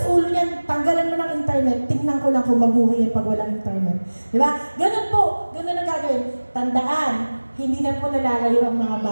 ulo niyan, tanggalan mo ng internet, tingnan ko lang kung mabuhay yan pag walang internet. Di ba? Ganun po, ganun ang gagawin. Tandaan, hindi na po nalalayo ang mga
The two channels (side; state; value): both; inverted; correlation -1.00